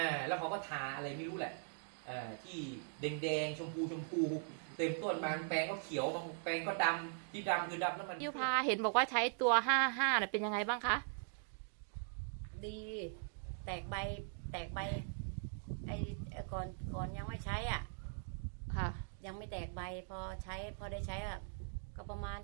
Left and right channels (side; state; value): left; silent; digital silence